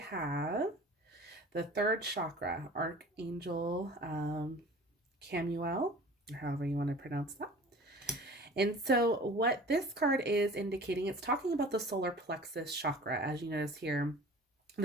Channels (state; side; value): normal; both; correlation 0.43